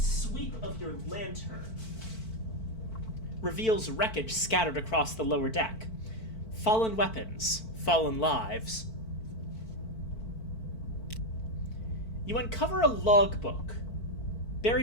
sweep of your lantern reveals wreckage scattered across the lower deck. Fallen weapons, fallen lives. You uncover a logbook,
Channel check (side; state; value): right; late; 4.5 ms